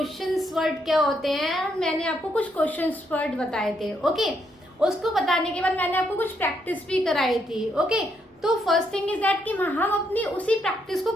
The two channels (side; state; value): both; normal; correlation 0.76